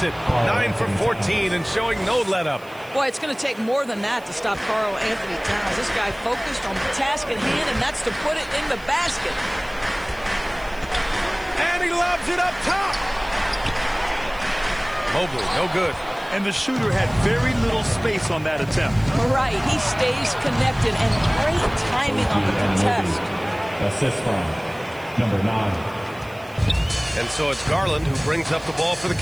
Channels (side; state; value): right; noise; hiss, 25 dB below the sound